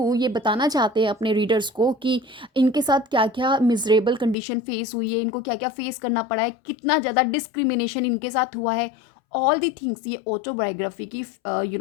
ये बताना चाहते हैं अपने रीडर्स को कि इनके साथ क्या क्या मिजरेबल कंडीशन फेस हुई है, इनको क्या क्या फेस करना पड़ा है, कितना ज़्यादा डिस्क्रिमिनेशन इनके साथ हुआ है. ऑल दी थिंग्स ये ऑटोबायोग्राफी की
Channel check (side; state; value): right; drops out; at 4.4 s